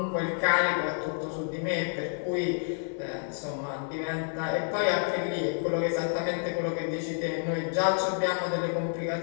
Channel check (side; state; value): right; silent; 57 dB below the other